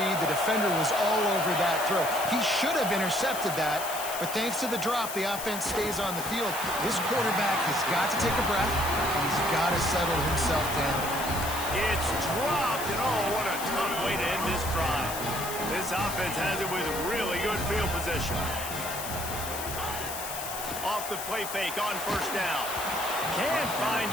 The defender was all over that throw. He should have intercepted that, but thanks to the drop, the offense stays on the field. This quarterback has got to take a breath, and he's got to settle himself down. It's dropped, and oh, what a tough way to end this drive. This offense has it with really good field position. Off the play fake on first down. Can't find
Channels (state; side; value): noise; left; hiss, 7 dB below the sound